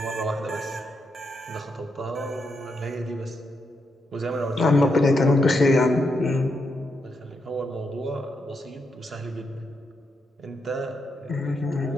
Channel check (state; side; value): normal; both; correlation 0.82